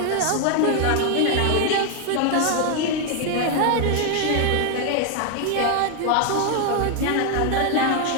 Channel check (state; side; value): different; both; correlation 0.01